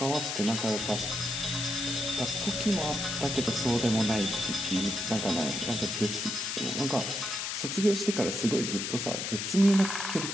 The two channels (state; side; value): noise; left; hiss, 3 dB below the sound